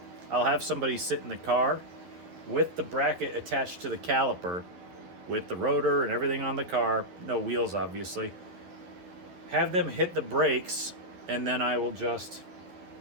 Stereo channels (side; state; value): left; late; 11 ms